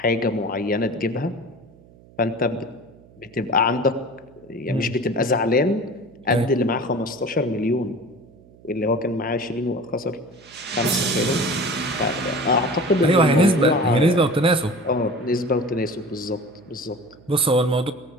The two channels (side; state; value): right; noise; hum, 25 dB below the sound